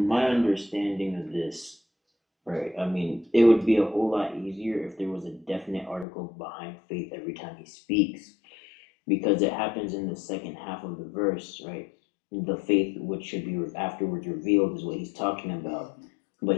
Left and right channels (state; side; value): drops out; right; at 6.1 s